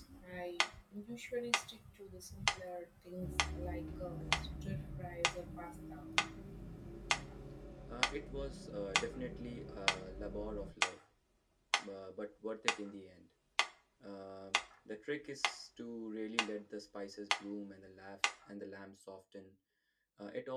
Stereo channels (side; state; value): both; identical; correlation 1.00